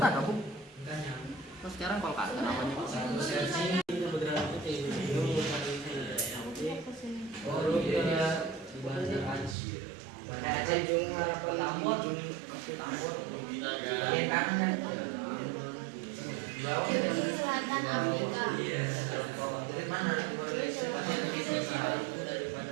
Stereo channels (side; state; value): left; drops out; at 9.6 s